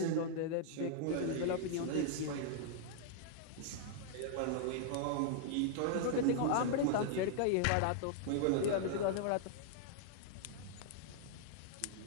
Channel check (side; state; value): both; different; correlation -0.01